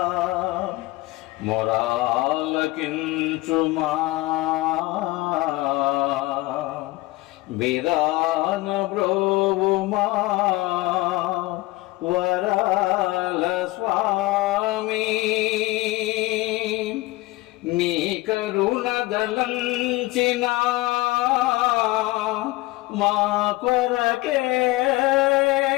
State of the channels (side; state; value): right; quieter; 19.9 dB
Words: మొరాలకించుమా విరాన బ్రోవుమా వరాల స్వామి నీ కరుణ దలంచిన మా కొరకే